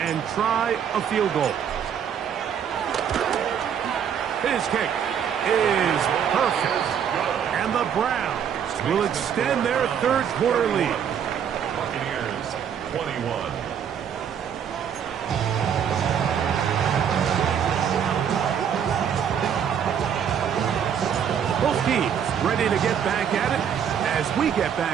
and try a field goal. His kick is perfect. And the Browns will extend their third quarter lead. Buccaneers 21. Both teams ready to get back at it as we get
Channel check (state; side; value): quieter; left; 8.3 dB